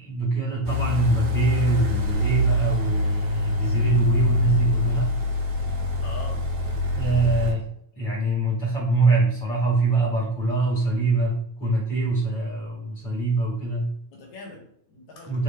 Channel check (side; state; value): right; late; 9.2 ms